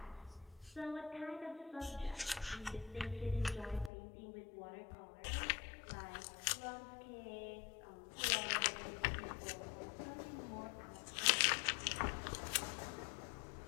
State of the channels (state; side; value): drops out; right; at 3.9 s